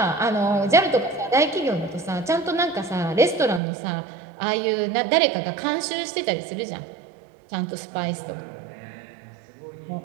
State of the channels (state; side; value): drops out; left; at 3.6 s